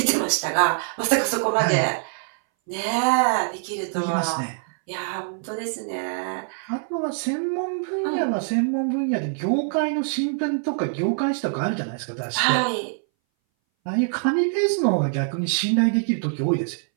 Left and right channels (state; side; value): silent; left; 60 dB below the other